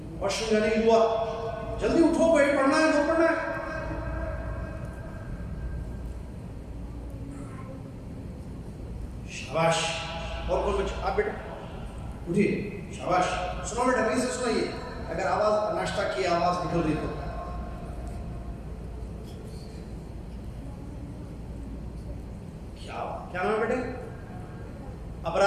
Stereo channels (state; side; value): identical; both; correlation 1.00